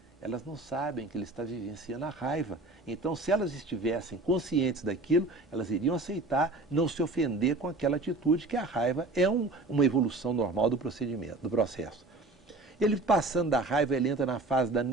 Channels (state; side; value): quieter; left; 3.0 dB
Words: Elas não sabem que ele está vivenciando a raiva. Então, se elas estivessem conscientes daquilo, elas iriam aceitar, não se ofender com aquela atitude, que a raiva é uma evolução normal do procedimento, do processo. Ele passando da raiva, ele entra na fase da